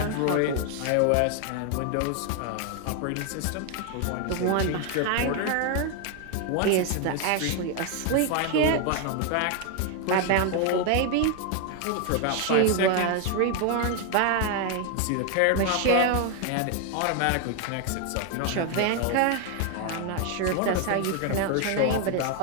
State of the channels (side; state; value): both; different; correlation 0.01